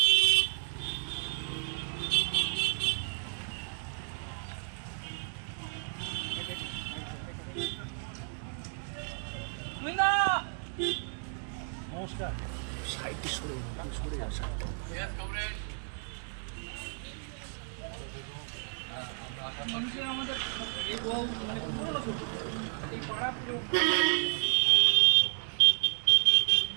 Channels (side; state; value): left; silent; 56 dB below the other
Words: নমস্কার। সাইডে সরে আসা। মানুষের আমাদের এই বহু মানে পুরনো ছবি, এই পাড়া পুরো